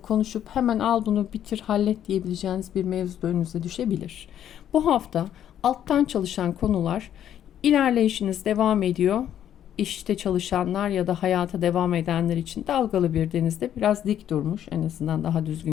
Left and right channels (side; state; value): right; quieter; 10.4 dB